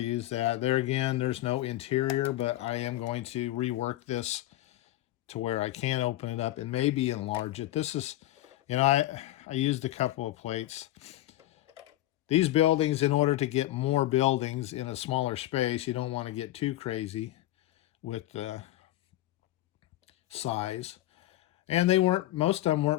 that. There again, there's no interior, but I am going to rework this to where I can open it up and maybe enlarge it. This is, I used a couple of plates. These buildings, in order to get more buildings in a smaller space, you don't want to get too crazy with the size. And most of them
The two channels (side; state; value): right; quieter; 15.2 dB